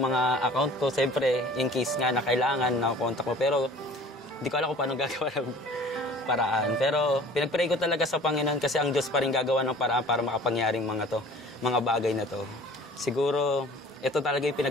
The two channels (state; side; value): normal; both; correlation 0.48